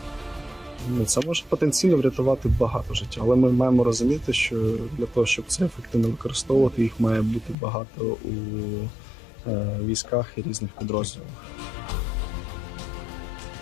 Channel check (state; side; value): drops out; right; at 7.6 s